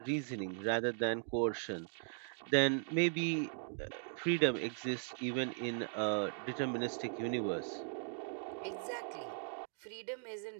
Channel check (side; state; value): left; silent; 52 dB below the other